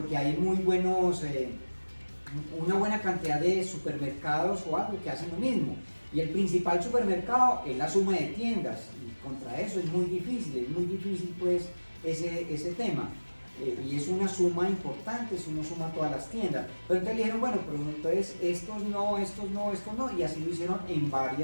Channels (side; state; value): both; inverted; correlation -1.00